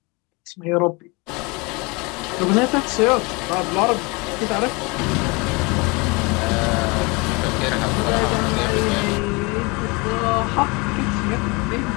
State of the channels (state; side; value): quieter; right; 27.6 dB